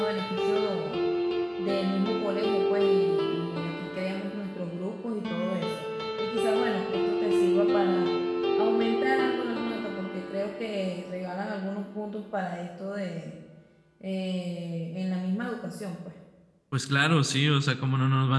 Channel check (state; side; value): identical; both; correlation 1.00